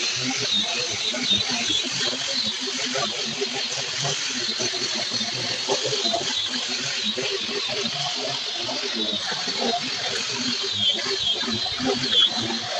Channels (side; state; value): both; identical; correlation 1.00